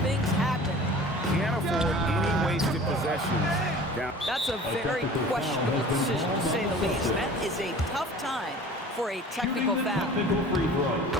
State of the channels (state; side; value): normal; both; correlation 0.43